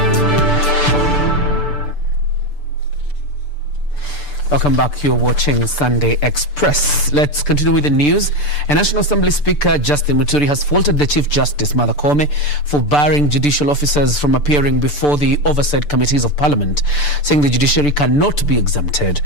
Welcome back. You're watching Sunday Express. Let's continue with the news. A National Assembly Speaker, Justin Muturi, has faulted the Chief Justice, Martha Koome, for barring judicial officers from appearing before the oversight committees of Parliament, saying the judiciary cannot be exempted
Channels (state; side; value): late; right; 6.8 ms